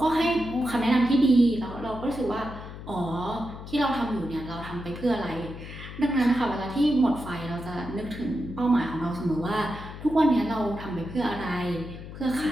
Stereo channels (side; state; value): left; noise; hum, 12 dB below the sound